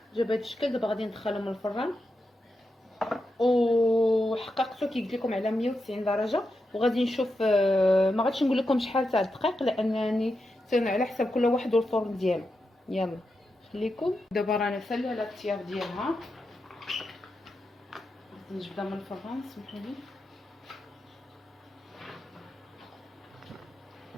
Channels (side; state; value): both; normal; correlation 0.87